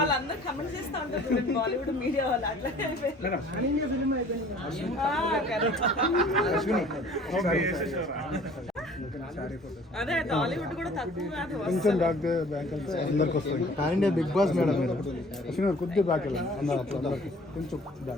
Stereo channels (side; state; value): both; normal; correlation 0.51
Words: కమెంట్ చేస్తూ ఉంటారు బాలీవుడ్ మీడియా వాళ్ళు అట్లా అదే టాలీవుడ్ కూడా తక్కువ కాదు. కొంచెం బ్యాక్ అందరికి వస్తుంది. Pan India big boss madam Ashwini garu కొద్దిగా బ్యాక్ వెళ్ళండి అప్పుడు అందరికి కొంచెం